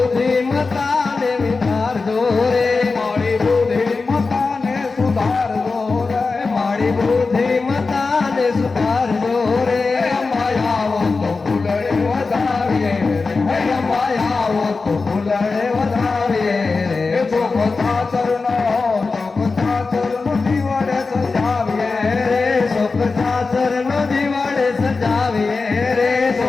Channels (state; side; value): quieter; right; 4.1 dB